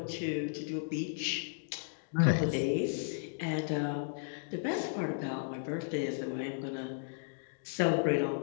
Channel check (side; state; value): right; silent; digital silence